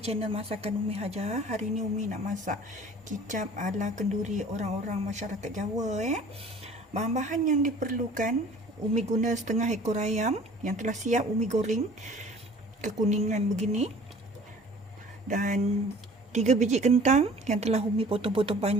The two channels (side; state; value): both; normal; correlation 0.49